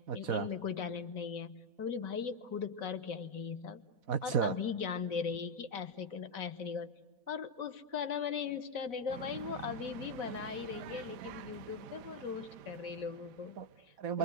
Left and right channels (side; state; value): left; late; 4.1 ms